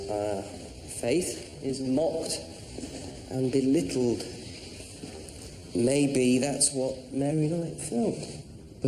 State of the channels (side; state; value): both; identical; correlation 1.00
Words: Our faith is mocked and belittled. Maybe that's what Mary Knight felt.